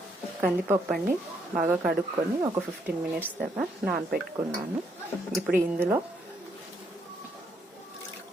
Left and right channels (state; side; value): normal; both; correlation 0.73